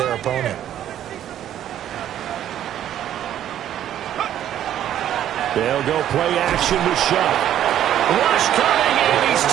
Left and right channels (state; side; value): quieter; left; 11.1 dB